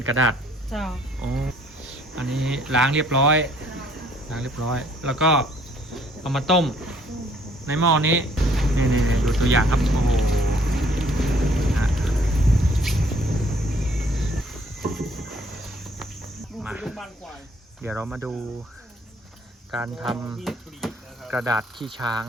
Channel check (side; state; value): both; normal; correlation 0.62